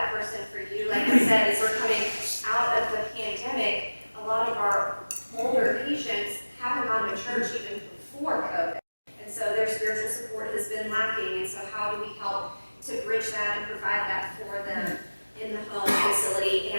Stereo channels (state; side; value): inverted; both; correlation -1.00